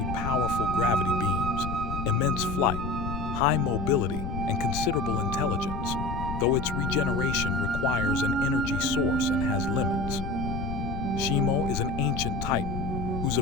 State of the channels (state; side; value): noise; left; rumble, 5 dB below the sound